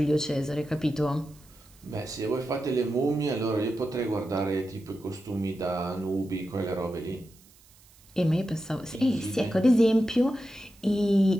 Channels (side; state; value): right; noise; hiss, 27 dB below the sound